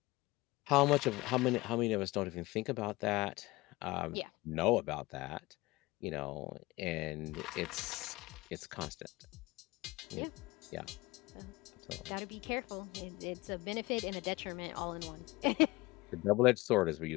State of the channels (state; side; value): quieter; right; 21.0 dB